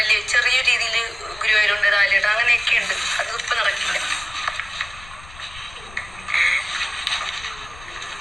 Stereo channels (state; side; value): noise; left; rumble, 19 dB below the sound